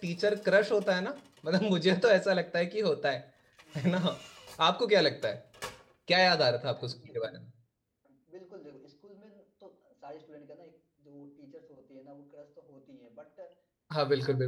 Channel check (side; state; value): both; identical; correlation 1.00